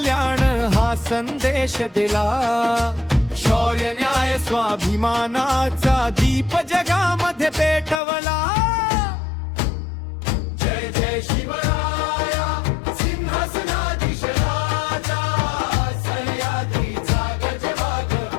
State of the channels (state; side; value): drops out; right; at 8.0 s